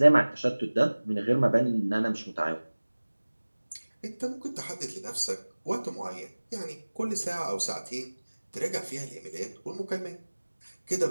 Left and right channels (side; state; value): both; inverted; correlation -1.00